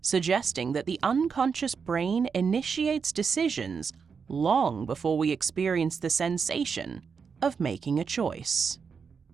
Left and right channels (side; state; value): left; quieter; 5.9 dB